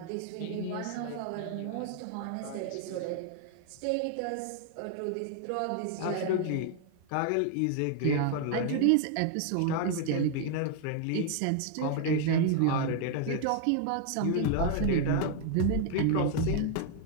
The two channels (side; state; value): both; different; correlation 0.00